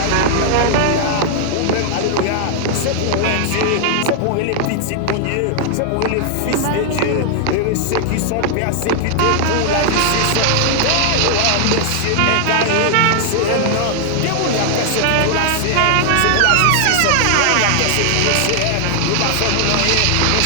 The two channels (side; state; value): both; different; correlation 0.00